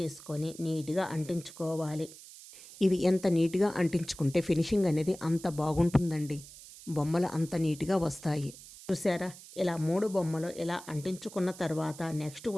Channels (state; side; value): noise; right; hiss, 17 dB below the sound